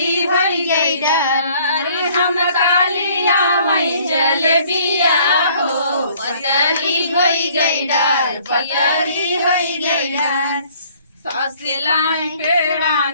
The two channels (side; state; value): both; inverted; correlation -0.58